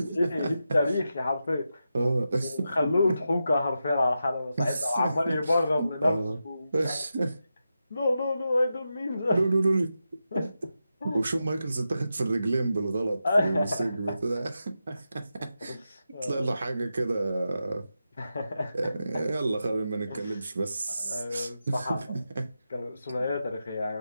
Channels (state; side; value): inverted; both; correlation -0.89